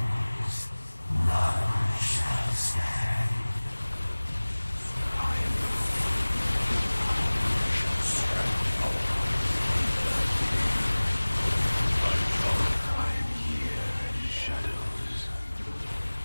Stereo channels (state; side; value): inverted; both; correlation -1.00